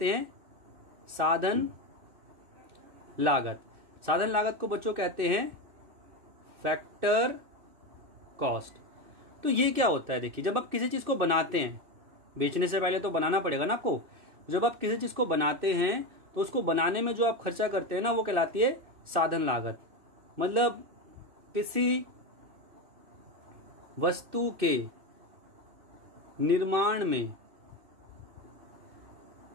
हैं साधन लागत। साधन लागत को बच्चों कहते हैं फैक्टर कॉस्ट। तो ये क्या होता है? देखिए, जब आप किसी चीज को बनाते हैं, बेचने से पहले तो बनाना पड़ेगा ना आपको। जब आप किसी चीज को बनाते हैं तो उसको बनाने में जो आप खर्चा करते हैं ना, वो कहलाती है साधन लागत। मतलब किसी वस्तु के निर्माण में,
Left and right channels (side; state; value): left; late; 2.6 ms